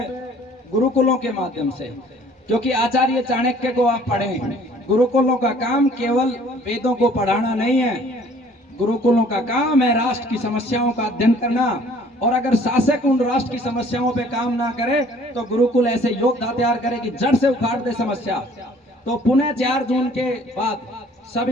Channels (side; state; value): both; normal; correlation 0.55